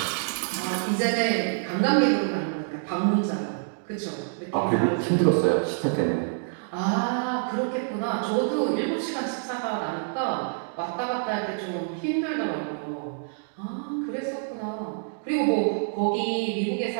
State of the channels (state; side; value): silent; left; digital silence